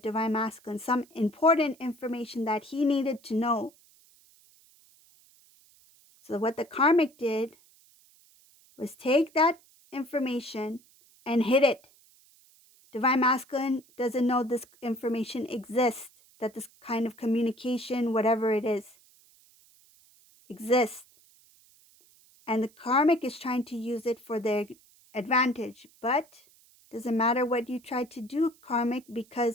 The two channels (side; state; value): right; noise; hiss, 29 dB below the sound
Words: masculine, some important information that he needed to know. So what the karmic did was take that information and hid it. Divine masculine doesn't know this information exists, that this kind of communication, whatever it is, exists. And the karmic is trying to use it for their advantage. But doesn't matter what you try to do, karmic,